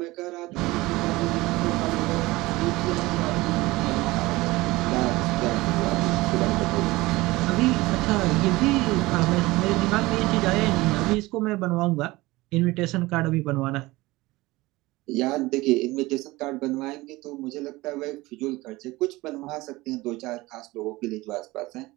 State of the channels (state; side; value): quieter; left; 20.2 dB